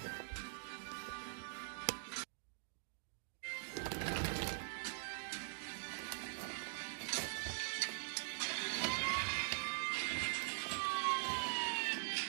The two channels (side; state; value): left; silent; digital silence